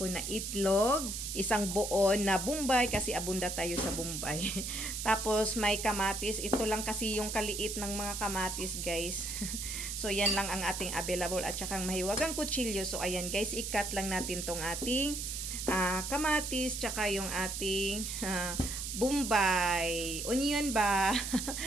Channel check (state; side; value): noise; right; hiss, 4 dB below the sound